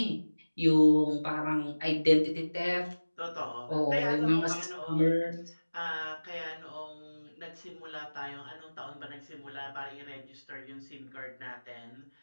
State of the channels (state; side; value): inverted; both; correlation -1.00